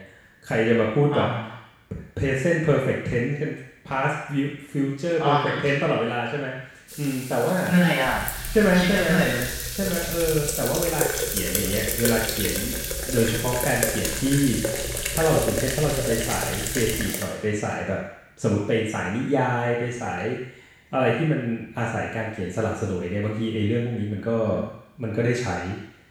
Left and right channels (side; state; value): both; identical; correlation 1.00